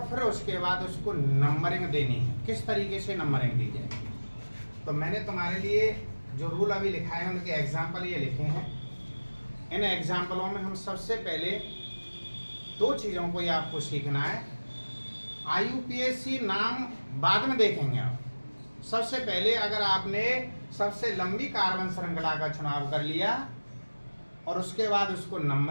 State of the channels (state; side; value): inverted; both; correlation -1.00